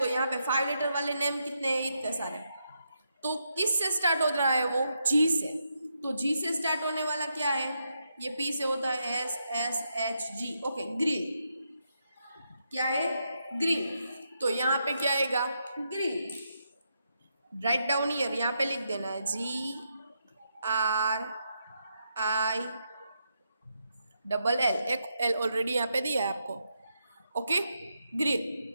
यहाँ पे 5 लेटर वाले नेम कितने हैं? इतने सारे। तो किस से स्टार्ट हो रहा है वो? जी से। तो जी से स्टार्ट होने वाला क्या है? ये पी से होता है S S H G. Okay, green. क्या है? ग्रीन। तो यहाँ पे क्या आएगा? ग्रीन। राइट डाउन ईयर, यहाँ पे लिख देना है GRIN। एक एल ऑलरेडी यहाँ पे दिया है आपको। Okay, green.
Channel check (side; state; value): both; inverted; correlation -0.82